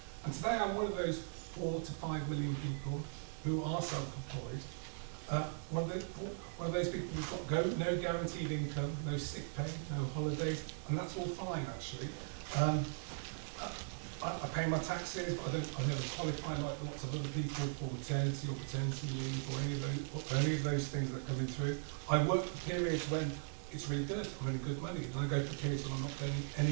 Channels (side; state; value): left; silent; digital silence